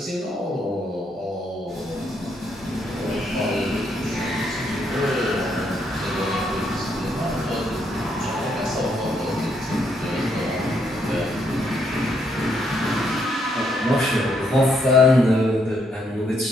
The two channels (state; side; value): normal; both; correlation 0.74